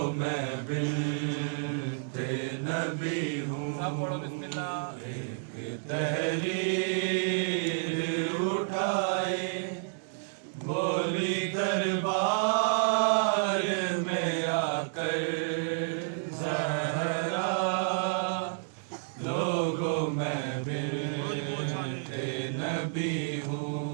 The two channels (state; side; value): silent; left; digital silence